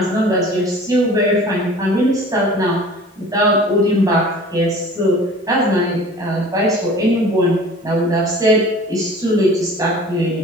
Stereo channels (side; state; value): both; normal; correlation 0.44